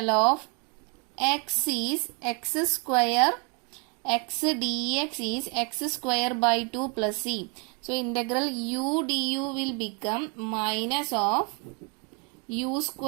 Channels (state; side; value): quieter; left; 33.9 dB